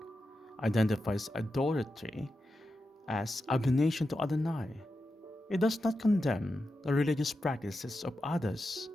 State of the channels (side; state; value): both; normal; correlation 0.89